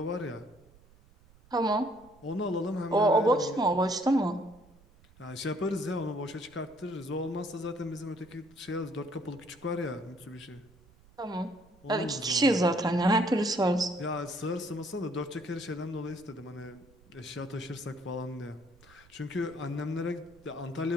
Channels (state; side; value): noise; right; rumble, 27 dB below the sound